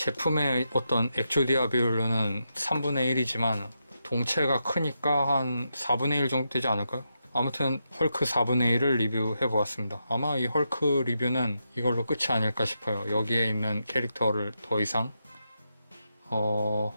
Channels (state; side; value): inverted; both; correlation -0.85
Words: 어떤 액조디아 비율로는 3분의 1이지만 동체가 크니까 한 4분의 1 정도 되지 않을까요? 아무튼 헐크 4분의 1을 리뷰해 보았습니다. 아마 이 헐크 리뷰는 이걸로 끝이 아닐까 싶어요. 여기에 있는 캐릭터를 더 이상